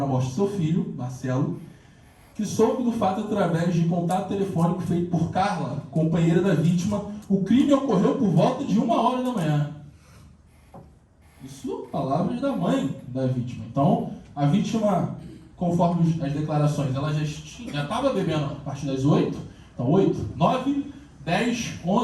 na morte do seu filho, Marcelo, que soube do fato através de contato telefônico feito por Carla, companheira da vítima. O crime ocorreu por volta de 1h da manhã. Isso, palavras da mãe da vítima. Então, a vítima, conforme as declarações, ela já estava bebendo a partir das 8. Então, 8, 9, 10,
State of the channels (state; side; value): identical; both; correlation 1.00